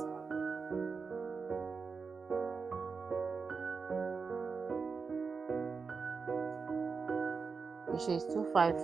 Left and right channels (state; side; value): quieter; left; 5.0 dB